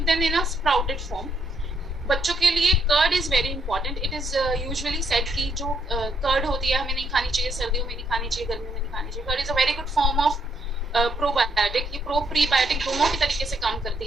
them in a sprouted form. बच्चों के लिए curd is very important. It is usually said कि जो कर्ड होती है हमें नहीं खानी चाहिए, सर्दियों में नहीं खानी चाहिए, गर्मियों में नहीं खानी चाहिए। Curd is a very good form of probiotic. ये प्रो प्रीबायोटिक दोनों की तरीके से काम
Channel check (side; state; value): both; normal; correlation 0.73